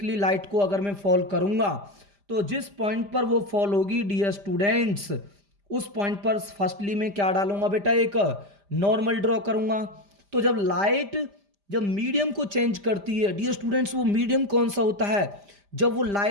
लाइट को अगर मैं फॉल करूंगा तो जिस पॉइंट पर वो फॉल होगी डियर स्टूडेंट्स उस पॉइंट पर फर्स्टली मैं क्या डालूंगा बेटा? एक नॉर्मल ड्रॉ करूंगा। तो जब लाइट जब मीडियम को चेंज करती है डियर स्टूडेंट्स, वो मीडियम कौन सा होता है? जब वो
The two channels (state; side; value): late; left; 5.0 ms